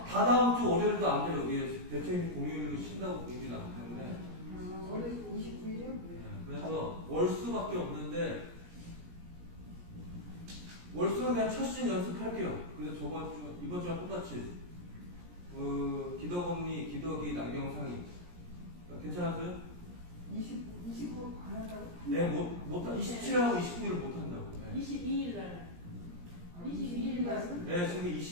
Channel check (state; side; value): late; left; 17 ms